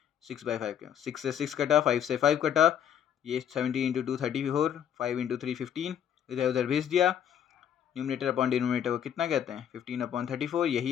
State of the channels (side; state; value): right; quieter; 9.3 dB